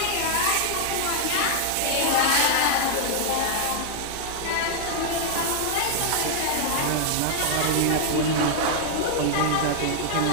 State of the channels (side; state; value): both; different; correlation 0.00